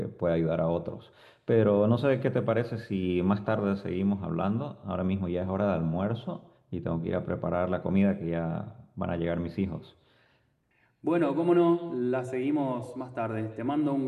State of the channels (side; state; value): both; identical; correlation 1.00